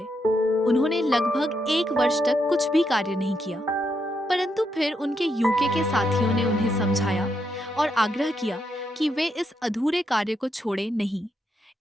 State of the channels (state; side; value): normal; both; correlation 0.80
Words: उन्होंने लगभग 1 वर्ष तक कुछ भी कार्य नहीं किया, परंतु फिर उनके यूके के साथियों ने उन्हें समझाया और आग्रह किया कि वे इस अधूरे कार्य को छोड़े नहीं।